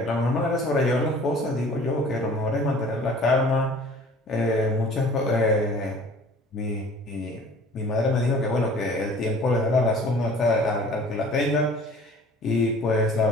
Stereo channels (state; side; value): normal; both; correlation 0.48